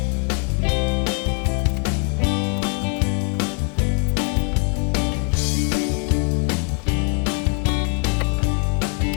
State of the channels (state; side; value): quieter; right; 38.0 dB